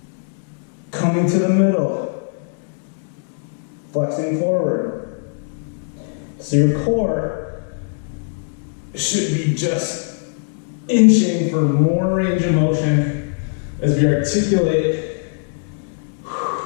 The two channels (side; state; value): right; silent; digital silence